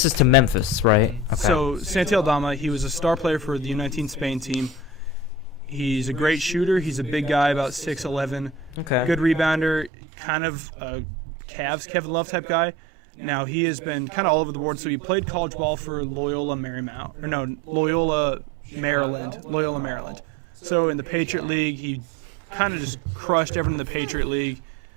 is to Memphis, right? Okay. So Santi Aldama, he was a star player for the U19 Spain team. He's a great shooter. He's a big guy, about 6'11", okay. good rebounder, kind of a Cavs Kevin Love type guy. Now he has been kind of all over the board. So he played college ball for Loyola Marymount, or no, Loyola Chicago? Maryland. Loyola Oh. Maryland. So in the Patriot Darn. League, he kind of just crushed everyone in the Patriot League.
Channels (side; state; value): left; drops out; at 9.9 s